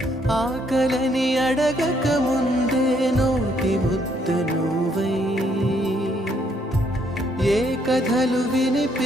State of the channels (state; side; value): normal; both; correlation 0.70